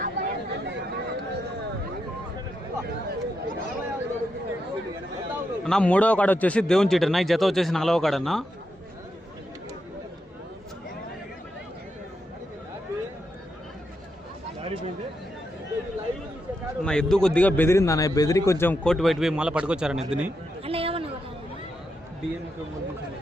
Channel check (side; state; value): both; normal; correlation 0.84